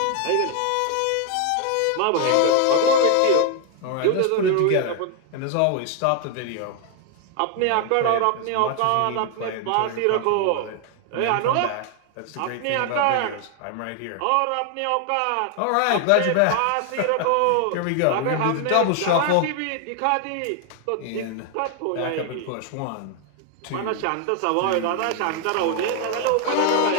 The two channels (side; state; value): both; different; correlation 0.00